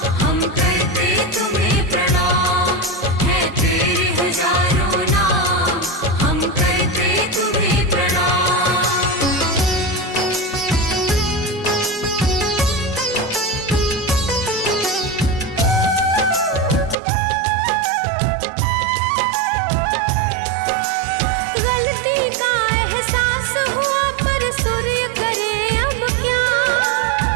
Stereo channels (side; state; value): left; drops out; at 16.9 s